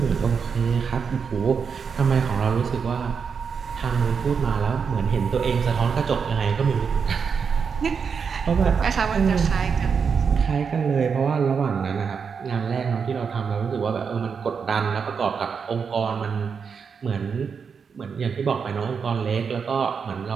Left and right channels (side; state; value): left; quieter; 6.1 dB